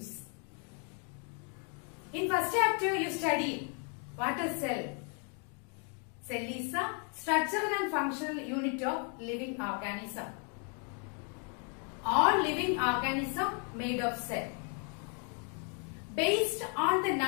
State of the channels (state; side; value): quieter; right; 39.4 dB